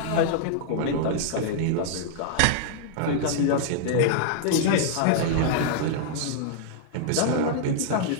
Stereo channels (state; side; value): different; both; correlation -0.01